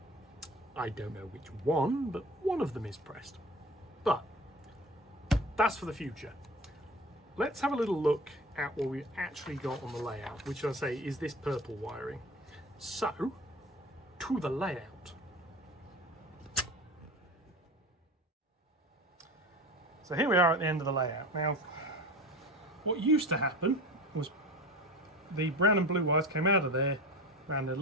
I don't know which one, but one of them is pressed. But that's for the future. Let's have a little look at what we actually got on the layout, which I say is this purple wiring. So, to the layout. So here we are at the end of the layout. Now, what used to happen was the brown and blue wires came out of there, ran a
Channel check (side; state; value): both; normal; correlation 0.34